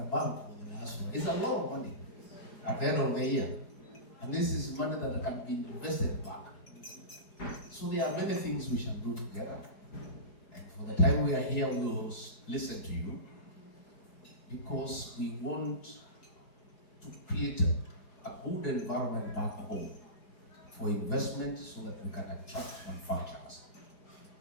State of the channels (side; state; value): right; late; 4.8 ms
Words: bank for the diaspora, is a lot of money at the end of the year. And this is money that can be invested back. So there are many things we shall do together. And for the time we are here, we will listen to you because we want to create a good environment back home for investment so that we can attract manufacturers.